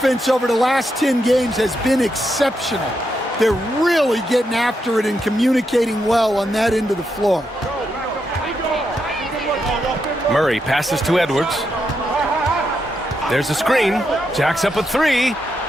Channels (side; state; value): both; normal; correlation 0.83